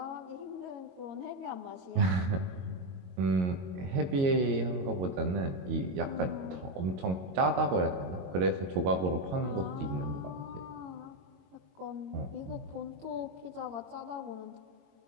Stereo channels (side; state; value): left; late; 22 ms